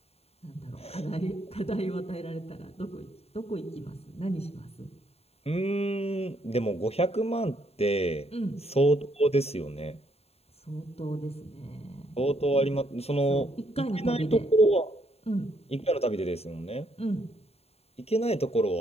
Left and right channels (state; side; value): late; right; 0.29 ms